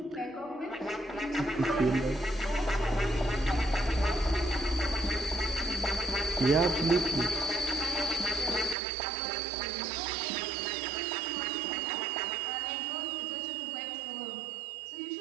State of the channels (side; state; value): left; drops out; at 8.8 s